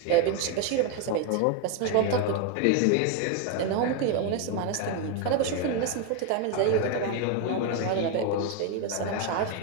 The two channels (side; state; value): both; different; correlation 0.01